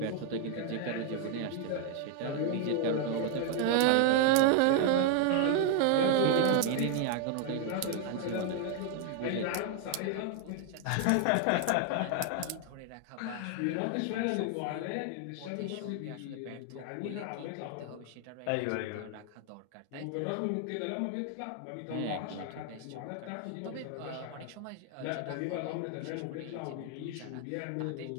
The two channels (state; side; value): different; both; correlation 0.00